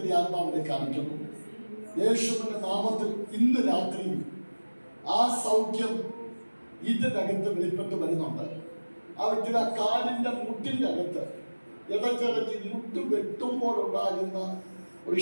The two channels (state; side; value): inverted; both; correlation -1.00